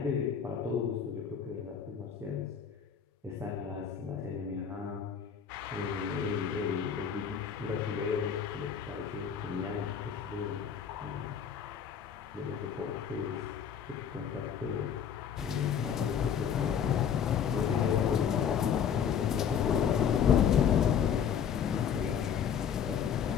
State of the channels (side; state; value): right; quieter; 7.8 dB